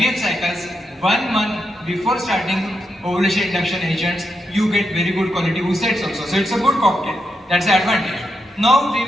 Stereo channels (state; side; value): normal; both; correlation 0.84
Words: cycles 1 month before starting ovulation induction agents, you get very good quality oosets also. So it's a good cocktail. That's the advantage. Now we